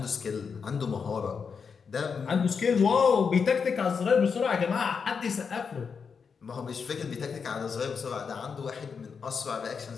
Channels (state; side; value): quieter; right; 5.9 dB